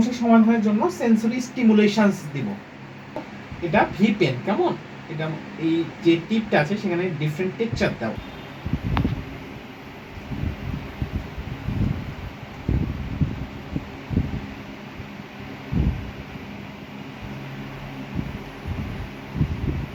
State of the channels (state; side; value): identical; both; correlation 1.00